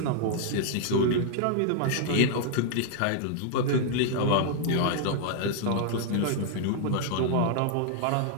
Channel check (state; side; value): different; both; correlation -0.01